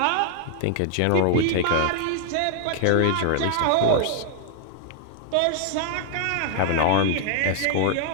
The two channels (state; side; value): different; both; correlation 0.00